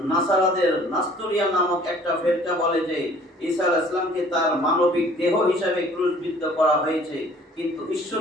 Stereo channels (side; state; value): both; normal; correlation 0.54